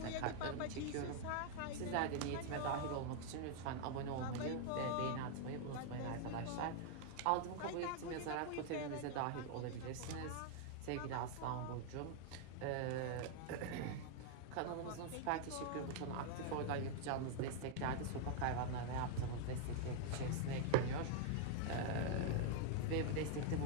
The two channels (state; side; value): different; both; correlation 0.00